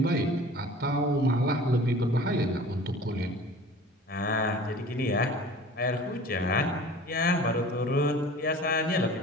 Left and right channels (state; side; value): normal; both; correlation 0.43